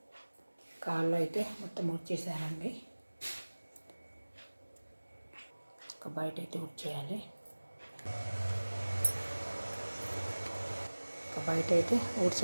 కాళ్ళు అయితే మొత్తం ఊడ్చేసానండి. ఒక బయట అయితే ఊడ్చేయాలి. ఒక బయట అయితే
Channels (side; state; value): both; inverted; correlation -1.00